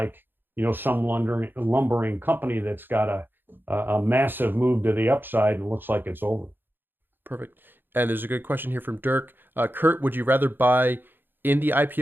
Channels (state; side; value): late; left; 0.097 ms